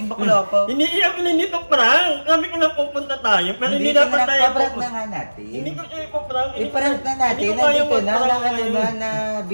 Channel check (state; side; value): inverted; both; correlation -1.00